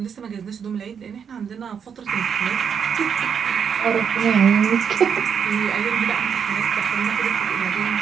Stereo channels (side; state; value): left; quieter; 7.2 dB